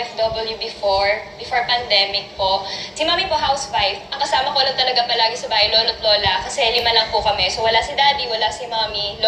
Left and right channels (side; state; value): both; identical; correlation 1.00